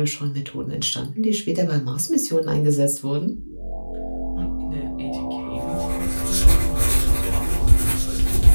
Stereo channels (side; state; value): both; inverted; correlation -1.00